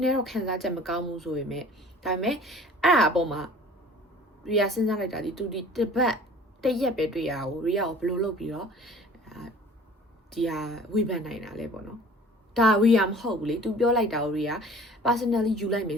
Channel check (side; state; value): both; normal; correlation 0.47